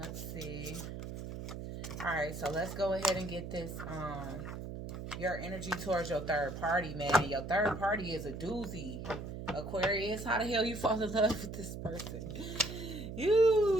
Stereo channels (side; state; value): right; noise; hum, 8 dB below the sound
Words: see. All right, so let's go ahead and get this, your energy towards your third party, man. Your third party is a doozy. Aquarius, how the hell you fall in love with this person?